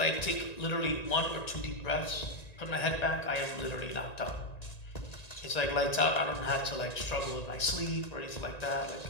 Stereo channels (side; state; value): right; late; 1.9 ms